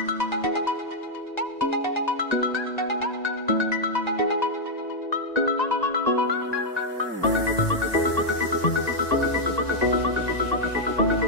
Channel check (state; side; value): late; right; 1.9 ms